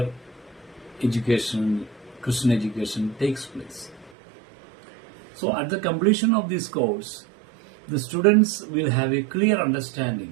Christian education takes place. So at the completion of this course, the students will have a clear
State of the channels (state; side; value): drops out; left; at 4.1 s